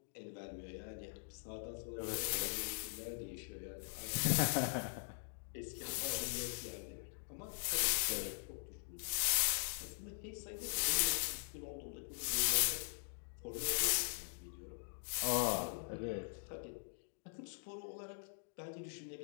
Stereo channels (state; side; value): silent; right; digital silence